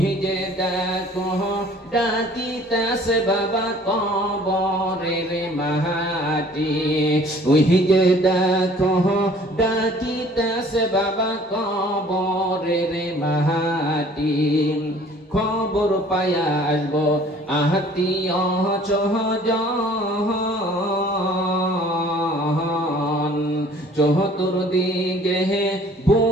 যে দেখো ডাকিতেছে বাবা কবরের মাহাতি, ওই যে দেখো ডাকিতেছে বাবা কবরের মাহাতি, খবর পায়া আসবো আত্মীয় চহজন, চতুর্দিকে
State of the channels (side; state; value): both; normal; correlation 0.53